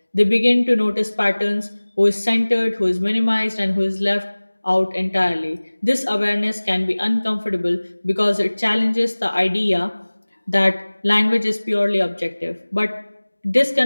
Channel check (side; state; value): both; inverted; correlation -1.00